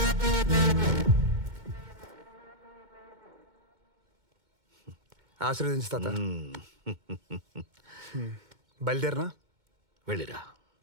ఆశీర్వదించు తాత. బయలుదేరనా? వెళ్ళిరా.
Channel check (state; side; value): late; left; 2.2 ms